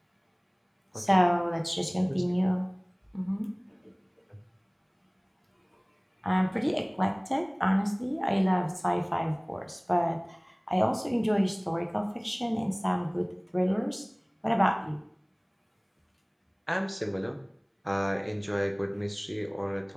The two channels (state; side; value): identical; both; correlation 1.00